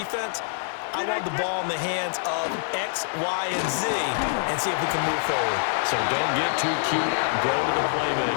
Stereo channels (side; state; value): right; silent; digital silence